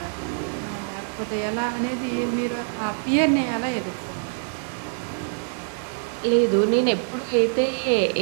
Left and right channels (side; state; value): left; silent; digital silence